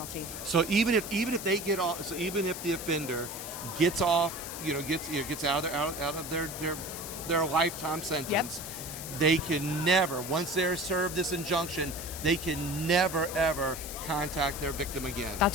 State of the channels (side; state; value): left; noise; hiss, 8 dB below the sound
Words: So even if they get off, so even if the offender gets off, gets out of their lifetime sentence, They can never, once they're served this injunction, they can never ever contact their victim again.